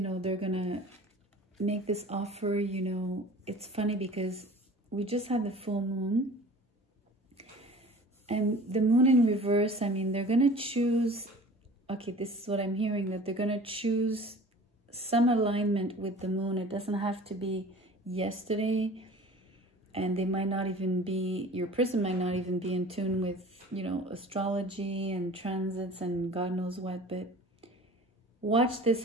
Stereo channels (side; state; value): both; normal; correlation 0.43